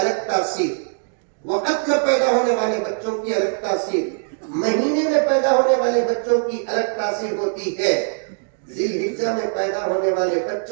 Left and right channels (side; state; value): left; silent; digital silence